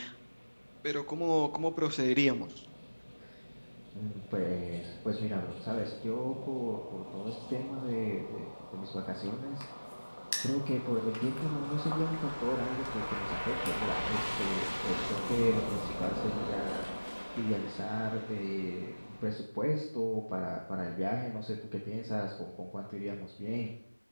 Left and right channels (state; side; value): inverted; both; correlation -1.00